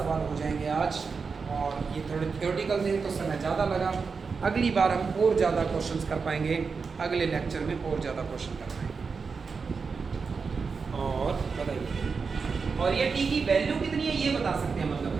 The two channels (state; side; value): quieter; left; 5.1 dB